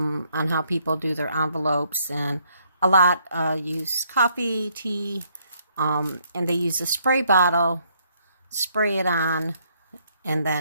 how people do their envelopes, and a lot use coffee, tea, and they use a spray bottle, spray it on, and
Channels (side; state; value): both; inverted; correlation -0.70